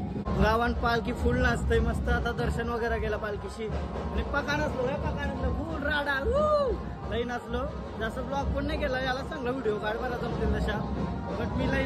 गावात पालखी फुल नाचतंय मस्त. आता दर्शन वगैरे केलं पालखीशी आणि पका नसलो फुल राडा लई नाचलो. जास्त ब्लॉग पण नाही केला, याला चांगला व्हिडिओ काढ बरा जमतील तशा, बट मी लई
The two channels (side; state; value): both; identical; correlation 1.00